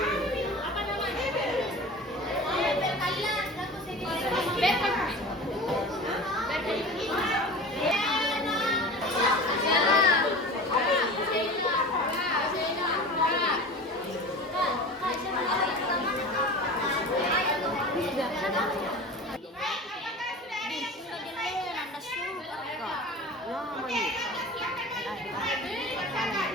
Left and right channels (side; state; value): both; normal; correlation 0.35